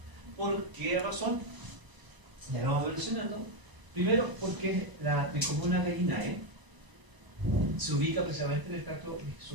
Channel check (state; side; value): late; left; 1.0 ms